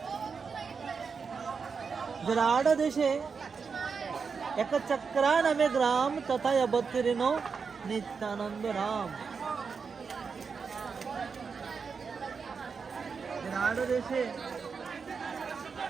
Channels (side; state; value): left; quieter; 5.5 dB